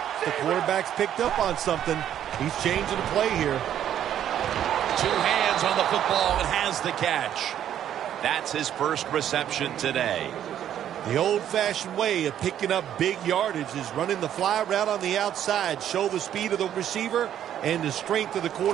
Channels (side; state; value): left; quieter; 10.5 dB